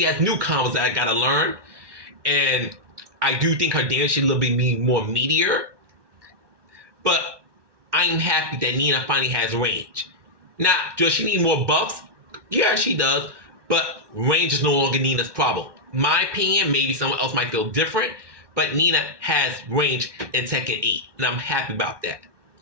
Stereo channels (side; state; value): left; late; 1.2 ms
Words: has new combos that I gotta learn. And I do think her damage should a little bit more meatier. But I'm happy that Nina finally has range. Now, does she need more buffs? Yeah, she does. But range is no longer Nina's problem. My opinion, maybe someone else might feel different. But Nina has range in Tekken 8. And I'm happy about that.